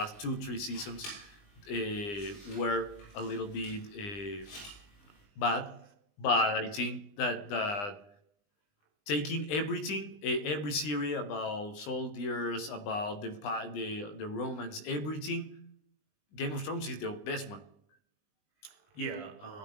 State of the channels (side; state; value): right; late; 20 ms